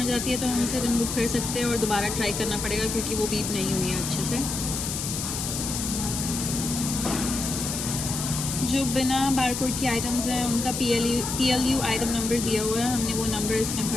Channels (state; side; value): noise; left; hiss, 4 dB below the sound